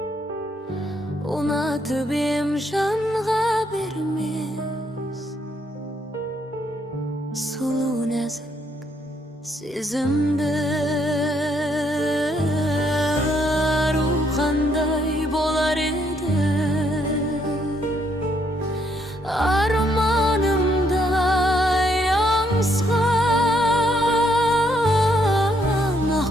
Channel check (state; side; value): normal; both; correlation 0.72